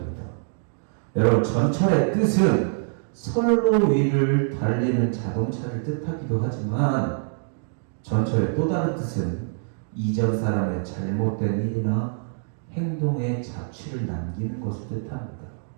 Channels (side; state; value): left; silent; digital silence